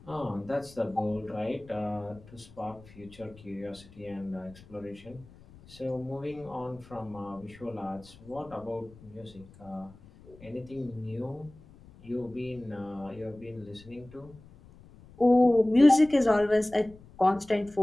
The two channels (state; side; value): noise; left; rumble, 22 dB below the sound